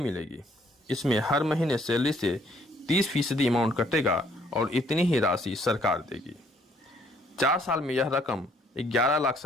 इसमें हर महीने सैलरी से 30% अमाउंट कटेगा और इतनी ही राशि सरकार देगी। 4 साल में यह रकम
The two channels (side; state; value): both; normal; correlation 0.65